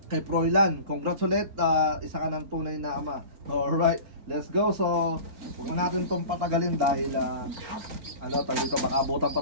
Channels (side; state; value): left; late; 4.4 ms